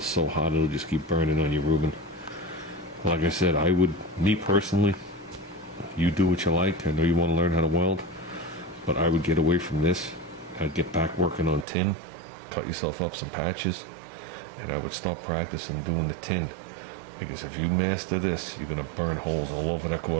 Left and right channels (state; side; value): drops out; left; at 11.7 s